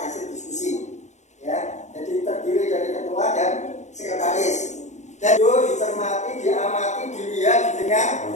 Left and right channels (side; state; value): right; late; 0.34 ms